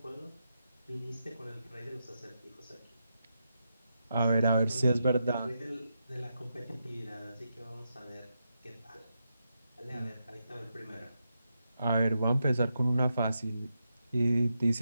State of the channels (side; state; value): both; inverted; correlation -0.86